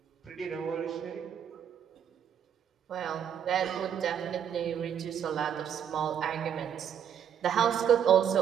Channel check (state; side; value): quieter; left; 8.7 dB